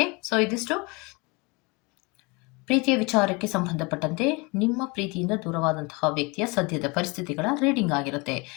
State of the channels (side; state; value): right; quieter; 27.8 dB